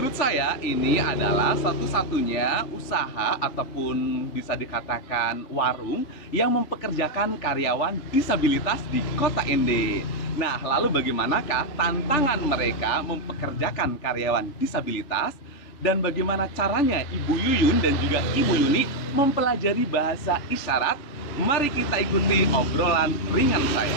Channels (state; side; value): late; right; 3.5 ms